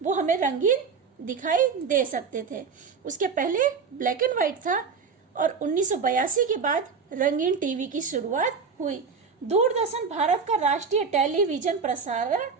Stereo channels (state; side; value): quieter; left; 5.5 dB